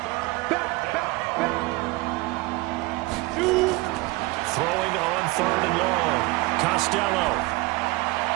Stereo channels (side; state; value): left; quieter; 22.7 dB